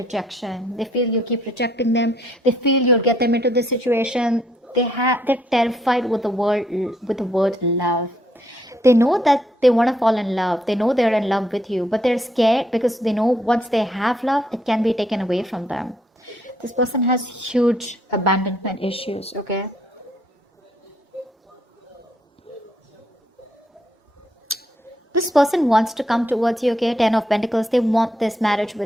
They feel you keep rejecting them. They feel you'll get them into this situation. They're terrified with the word love. They know that they want to fall in love. They know they're in love with you, but they're scared because they know once they have love, it can be taken away from them. This person has huge abandonment issues, okay? This person wants to come towards you, okay? 10 of Pentacles. They want this marriage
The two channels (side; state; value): both; normal; correlation 0.71